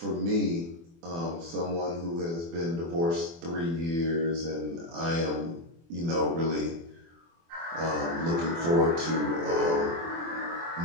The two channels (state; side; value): late; left; 24 ms